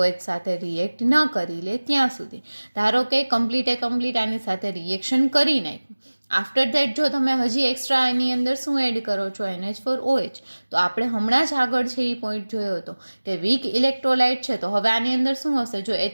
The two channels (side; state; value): both; inverted; correlation -1.00